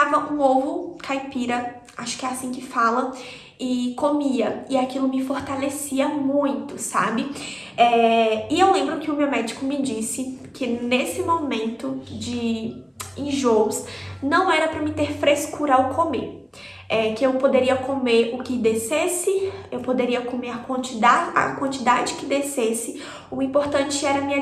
um ovo caipira, acho que é assim que fala, e comia. E aquilo me fortalecia muito, sabe? E eu lembro que o meu médico me disse que nesse momento de enjoos, não era para me ter frescura ao comer. Que eu poderia comer o que descesse, eu poderia comer a quantidade que descesse, o importante era me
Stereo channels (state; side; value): identical; both; correlation 1.00